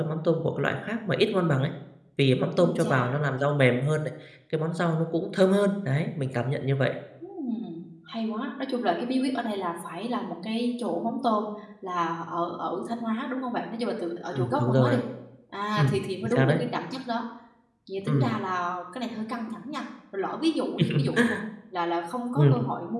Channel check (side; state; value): both; identical; correlation 1.00